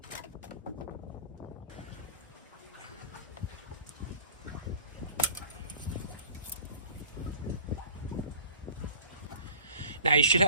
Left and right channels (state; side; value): inverted; both; correlation -0.47